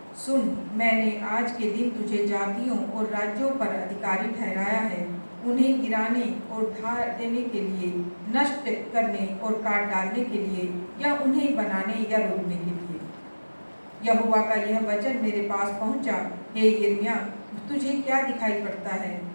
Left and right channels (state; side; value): inverted; both; correlation -1.00